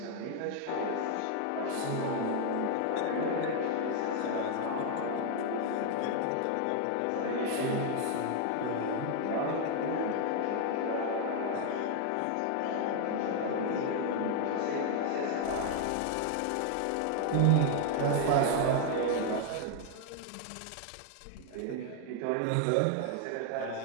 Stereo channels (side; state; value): both; different; correlation 0.00